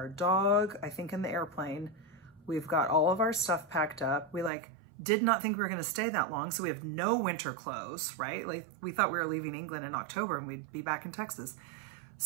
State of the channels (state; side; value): drops out; left; at 4.5 s